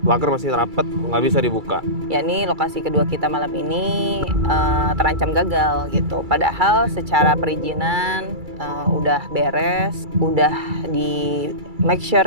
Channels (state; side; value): late; left; 2.3 ms